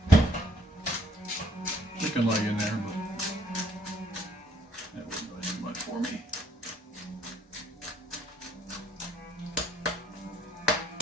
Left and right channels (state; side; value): normal; both; correlation 0.66